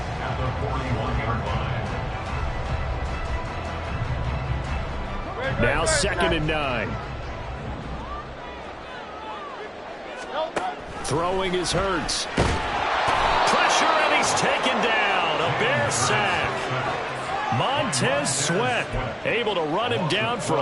the 41-yard line. Now 2nd and 9. Throwing is Hurts. Pressure, and he's taken down. A Bear sack. Montez Sweat able to run him down for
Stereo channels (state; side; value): identical; both; correlation 1.00